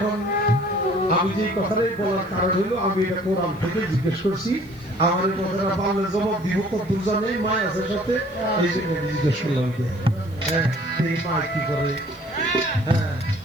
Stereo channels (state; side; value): noise; right; hiss, 28 dB below the sound